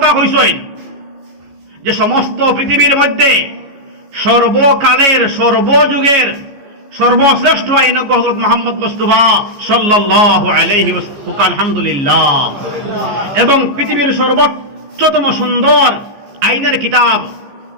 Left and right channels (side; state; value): left; late; 14 ms